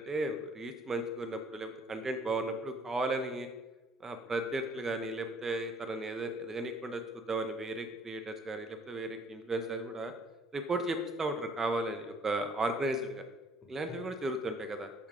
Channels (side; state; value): both; normal; correlation 0.59